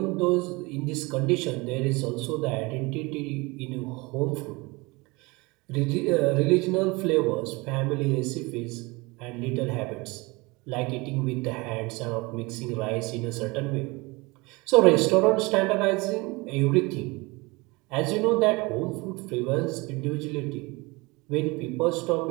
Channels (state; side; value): quieter; left; 24.9 dB